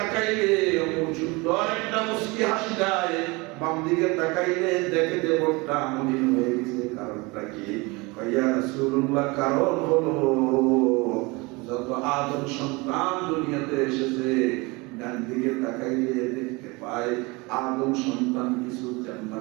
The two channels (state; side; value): quieter; left; 25.5 dB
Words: সুন্দর একটা মুস্কি হাসি দেয়, বাম দিকে তাকাইলে দেখে যে মনটা মলিন হয়ে গেছে। কারণটা কি? ইয়া রাসূলুল্লাহ, কারণ হলো যত আদম সন্তান দুনিয়াতে এসেছে ডান দিকে তাকাইলে দেখতে পায় আদম সন্তান কিছু